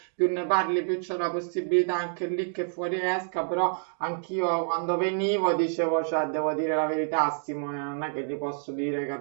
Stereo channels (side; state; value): left; silent; digital silence